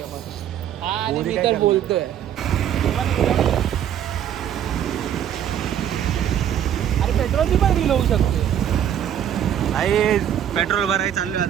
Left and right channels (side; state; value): left; quieter; 10.0 dB